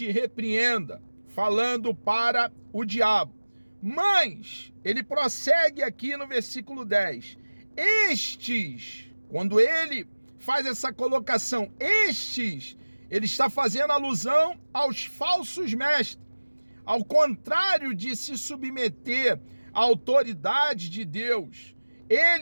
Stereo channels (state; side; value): inverted; both; correlation -1.00